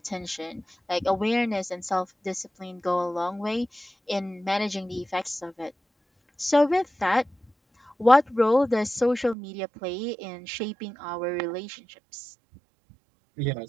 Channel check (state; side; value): drops out; left; at 9.3 s